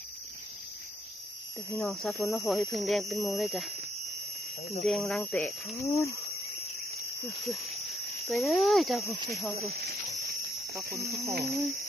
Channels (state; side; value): normal; both; correlation 0.73